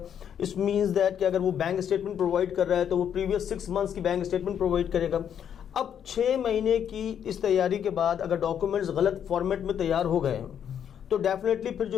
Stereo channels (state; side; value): quieter; right; 8.8 dB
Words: इस मीन्स दैट कि अगर वो बैंक स्टेटमेंट प्रोवाइड कर रहा है तो वो प्रीवियस 6 मंथ्स की बैंक स्टेटमेंट प्रोवाइड करेगा। अब 6 महीने की इस तैयारी के बाद अगर डॉक्यूमेंट्स गलत फॉर्मेट में तैयार हो गए तो डेफिनेटली फिर